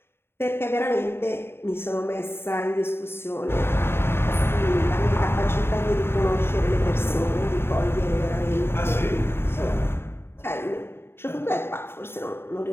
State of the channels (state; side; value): late; right; 0.11 ms